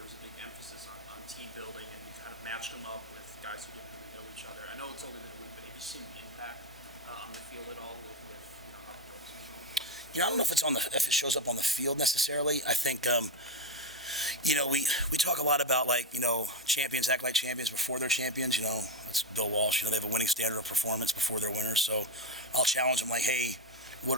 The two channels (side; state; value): both; normal; correlation 0.12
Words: was a big emphasis on team building, and you kind of matched them up with guys who didn't really know each other. I know it's only been a week, but have you seen the impact on the field at all with how the dorms are going? I don't know if it shows up on the field necessarily. I think we talk a lot about champions act like champions before they're champions. That's Bill Walsh. They have a winning standard of performance before they're winners. So I'll challenge them hey,